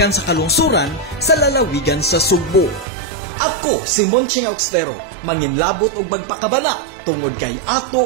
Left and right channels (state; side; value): drops out; left; at 2.9 s